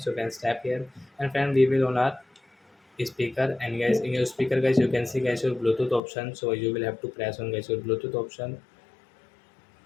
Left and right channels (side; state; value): right; drops out; at 6.0 s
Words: so you can tap here. And friend, we will on our speaker, and guys in your speaker guys you can see guys your Bluetooth option, so you will have to press on guys your Bluetooth option.